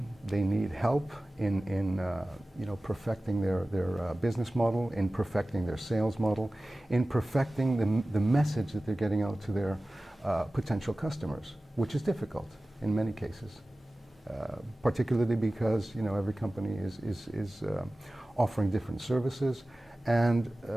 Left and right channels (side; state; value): both; normal; correlation 0.97